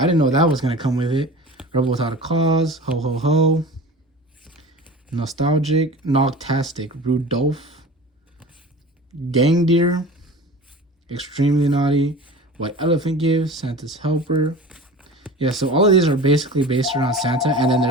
didn't know that was gonna come with it. Rebel Without a Cause, Ho Ho Ho, Nostalgic, Noctastic, Rudolph, Gang Deer, Extremely Naughty, White Elephant Gift, Santa's Helper. Yeah, so all of these are basically based around Santa, and then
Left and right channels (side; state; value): both; normal; correlation 0.37